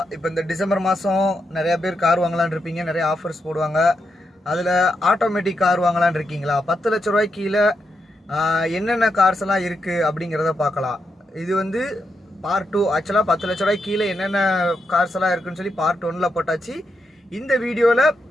இப்போ இந்த டிசம்பர் மாதம் நிறையா பேர் கார் வாங்கலான்னு இருப்பீங்க. நிறைய ஆஃபர்ஸ் போடுவாங்க. அதில் ஆட்டோமேட்டிக் கார் வாங்கலான்னு இருக்கீங்களா? 10 லட்ச ரூபாய்க்கு கீழே என்னென்ன கார்ஸ் எல்லாம் இருக்குது அப்படிங்கிறத பார்க்கலாம். இது வந்து பார்ட் 2. ஆக்சுவலாக 10 லட்ச ரூபாய்க்கு கீழே என்னென்ன கார்ஸ் எல்லாம் இருக்குன்னு சொல்லி பார்ட் 1ல் போட்டாச்சு. இந்த வீடியோவில்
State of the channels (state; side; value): normal; both; correlation 0.83